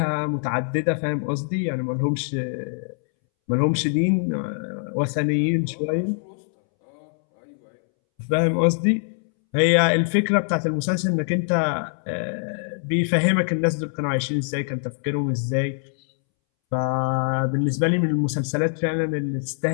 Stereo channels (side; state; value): right; silent; 63 dB below the other